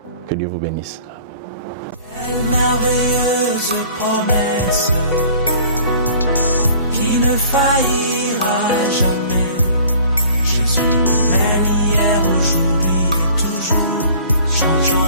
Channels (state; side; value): inverted; both; correlation -0.50